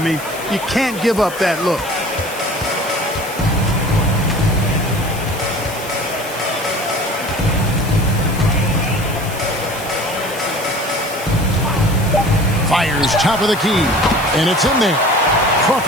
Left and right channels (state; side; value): noise; left; hiss, 13 dB below the sound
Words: you can't give up that look. Fires top of the key, and it's in there.